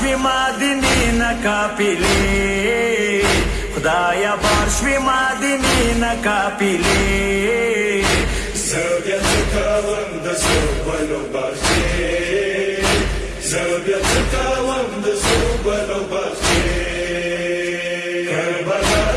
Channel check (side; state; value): both; identical; correlation 1.00